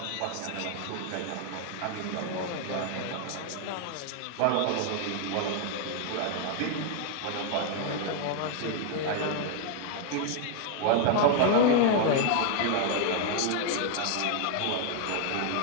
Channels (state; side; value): different; both; correlation 0.00